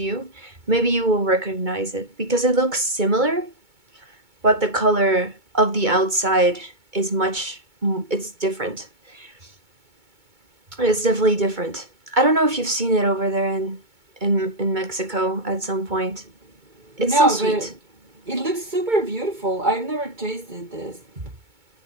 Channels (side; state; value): left; late; 2.2 ms